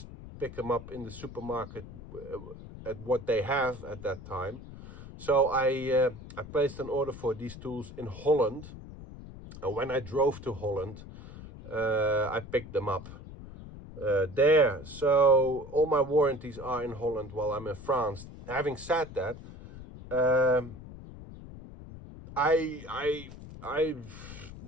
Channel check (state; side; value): noise; left; rumble, 14 dB below the sound